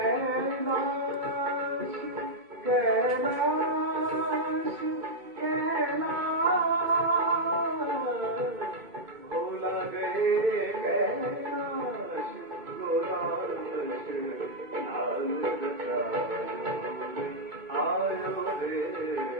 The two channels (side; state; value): left; late; 2.2 ms